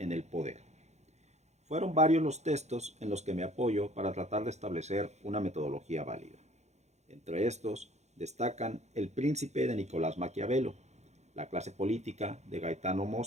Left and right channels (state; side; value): late; left; 0.33 ms